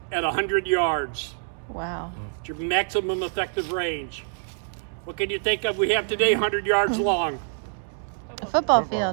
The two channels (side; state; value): left; silent; 61 dB below the other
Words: at 100 yards. Wow. It's your maximum effective range. What can you think of we have today 100 yards long? A football